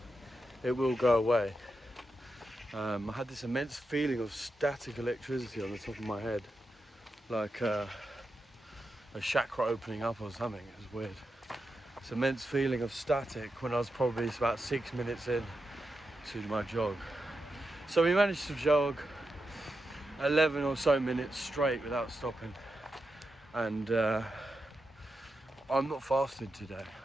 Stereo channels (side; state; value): both; normal; correlation 0.88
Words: it will go away. I had this immense feeling of static electricity on the top of my head, like a chakra opening up or something. It was weird. This immense feeling of static when I was probably about 6 minutes in to my jog. So we managed to jog 11 or so minutes straight without stopping, and I'm not fasted today.